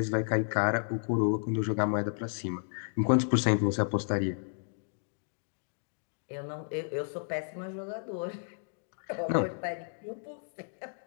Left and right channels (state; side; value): silent; right; digital silence